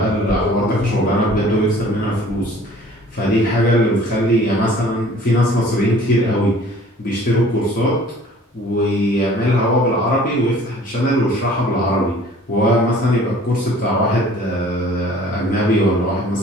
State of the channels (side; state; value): both; normal; correlation 0.51